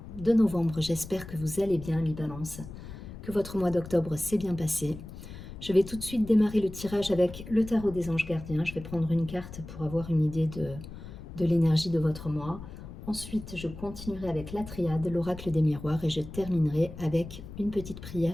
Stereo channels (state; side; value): noise; left; rumble, 13 dB below the sound